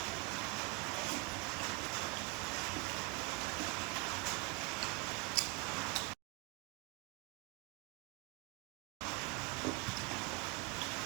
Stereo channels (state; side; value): quieter; left; 27.1 dB